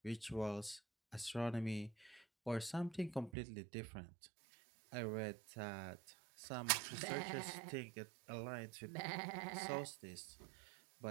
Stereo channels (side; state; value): left; drops out; at 3.3 s